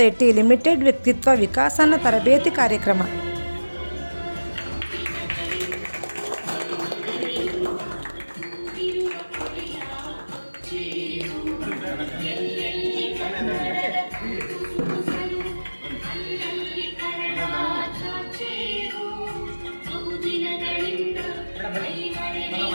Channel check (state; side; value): inverted; both; correlation -1.00